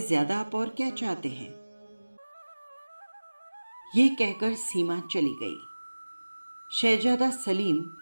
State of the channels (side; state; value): both; inverted; correlation -1.00